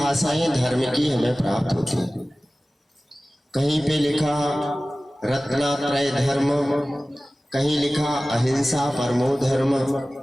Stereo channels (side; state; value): both; normal; correlation 0.97